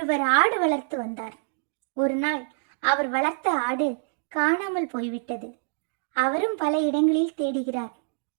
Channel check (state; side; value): silent; left; digital silence